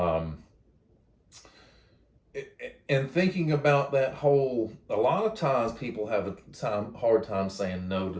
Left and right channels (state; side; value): identical; both; correlation 1.00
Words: and thinking about that whole, a lot of times people have a hard time saying no to